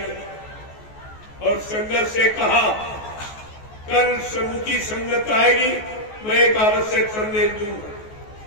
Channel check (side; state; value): right; late; 14 ms